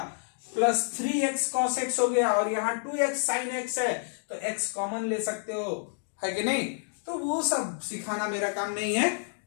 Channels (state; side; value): silent; right; digital silence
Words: प्लस 3x कॉस एक्स हो गया और यहाँ 2x साइन एक्स है तो x कॉमन ले सकते हो, है कि नहीं। तो वो सब सिखाना मेरा काम नहीं है,